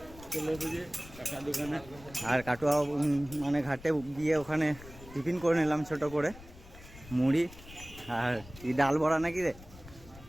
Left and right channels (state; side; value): noise; left; rumble, 18 dB below the sound